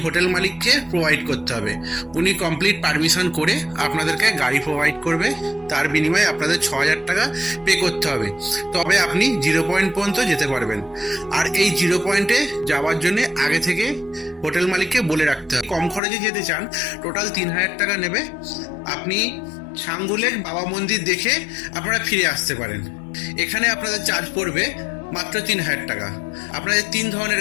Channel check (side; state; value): right; drops out; at 16.0 s